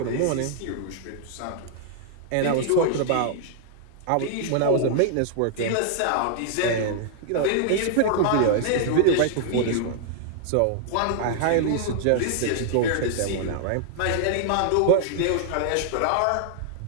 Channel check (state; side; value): different; both; correlation -0.01